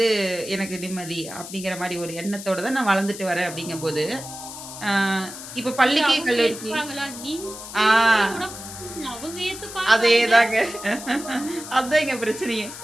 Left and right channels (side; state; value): left; noise; hiss, 12 dB below the sound